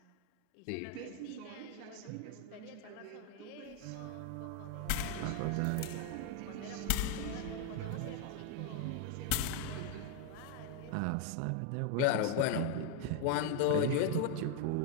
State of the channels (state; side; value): different; both; correlation 0.00